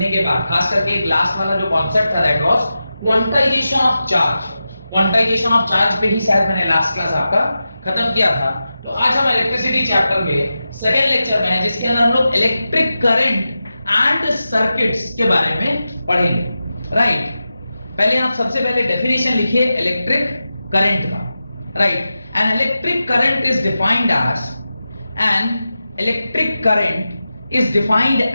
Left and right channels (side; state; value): both; inverted; correlation -0.92